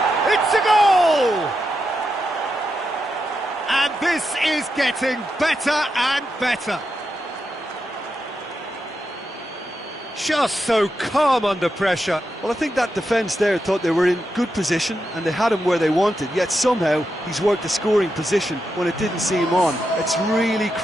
It's a goal! And this is getting better and better. Just so calm under pressure. Well, I think that defence there thought they were in good position and they had him where they wanted, yet somehow he's worked a scoring position when it didn't see him on. It's really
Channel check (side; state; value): both; normal; correlation 0.86